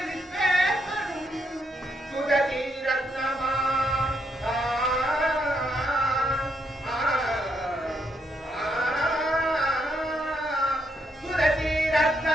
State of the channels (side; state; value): both; normal; correlation 0.77